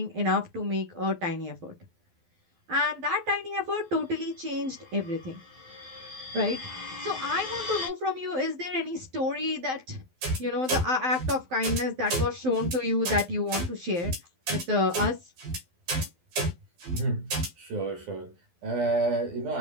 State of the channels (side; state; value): left; late; 12 ms